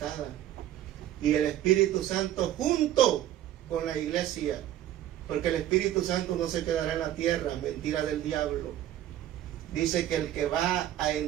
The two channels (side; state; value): left; quieter; 12.4 dB